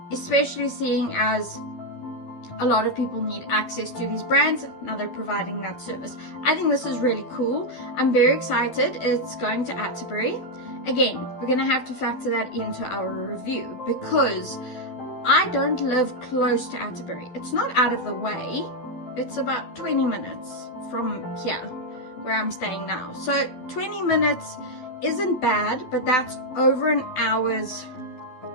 especially seeing as a lot of people need access to these brands. Now they're providing that service. I think this is really cool. I'm very excited. It's going to Atterbury. Again, we're going to have to factor that into our review because I don't live close to Atterbury. It's not out of the way. It's about 20 minutes from here where I'm staying now. So 20 minutes isn't bad, but that's over an hour's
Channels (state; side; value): late; right; 12 ms